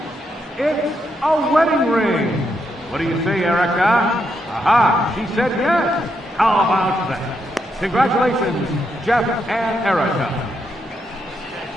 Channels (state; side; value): normal; both; correlation 0.80